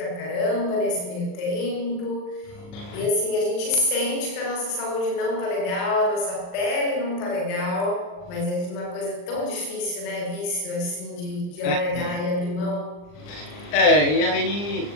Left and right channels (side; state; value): right; late; 39 ms